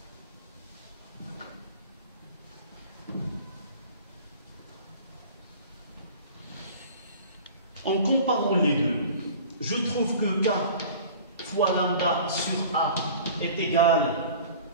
En comparant les deux, je trouve que K fois lambda sur A est égal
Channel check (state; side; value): inverted; both; correlation -0.43